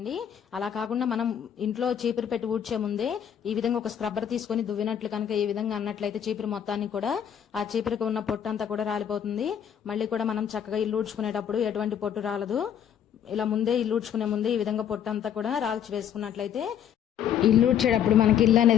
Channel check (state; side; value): quieter; right; 9.1 dB